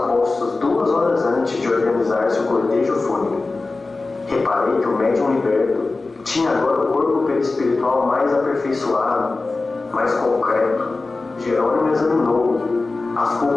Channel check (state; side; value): quieter; right; 3.5 dB